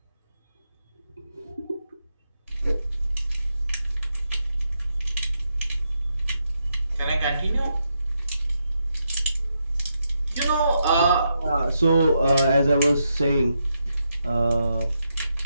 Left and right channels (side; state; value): both; inverted; correlation -0.83